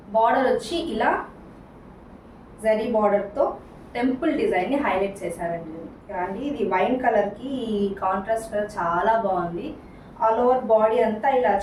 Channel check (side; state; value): both; identical; correlation 1.00